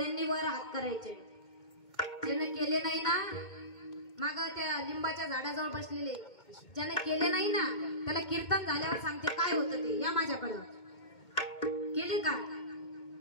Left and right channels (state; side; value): late; right; 2.2 ms